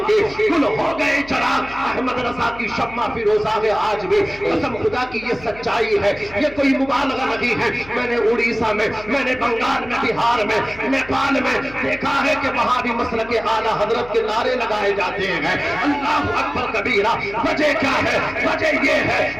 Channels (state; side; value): noise; left; hum, 20 dB below the sound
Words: کے گل ہو گئے چراغ، احمد رضا کی شمع فیروزہ ہے آج بھی۔ قسم خدا کی یہ سچائی ہے، یہ کوئی مبالغہ نہیں ہے۔ میں نے اڑیسہ میں، میں نے بنگال میں، بہار میں، نیپال میں دیکھا ہے کہ وہاں بھی مسلک اعلیٰ حضرت کے نعرے لگائے جاتے ہیں، اللہ اکبر کبیرہ۔ وجہ کیا ہے؟ وجہ یہ